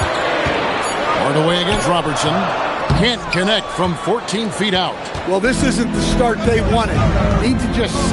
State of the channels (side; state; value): both; identical; correlation 1.00